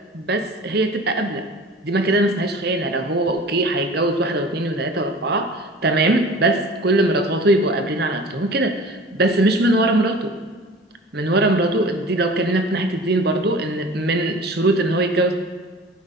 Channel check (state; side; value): normal; both; correlation 0.41